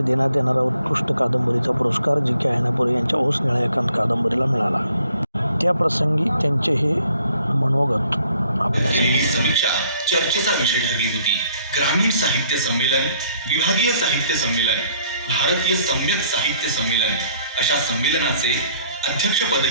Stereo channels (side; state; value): both; inverted; correlation -0.63